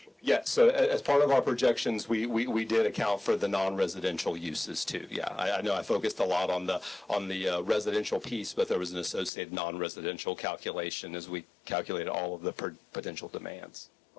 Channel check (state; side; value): drops out; right; at 9.3 s